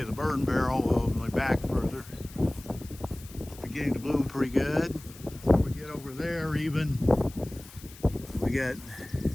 of the burn barrel. Well, my back further. It's beginning to bloom pretty good. Before we get over there, even we got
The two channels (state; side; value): noise; left; hiss, 19 dB below the sound